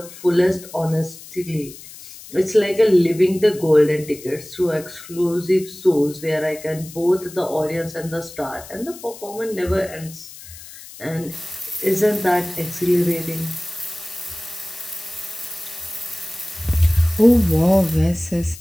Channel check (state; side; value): noise; left; hiss, 17 dB below the sound